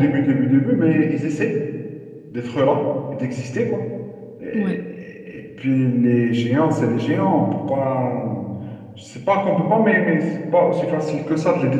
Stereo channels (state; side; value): identical; both; correlation 1.00